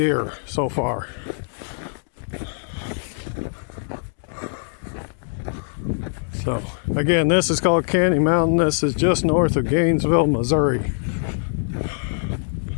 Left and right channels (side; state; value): right; silent; digital silence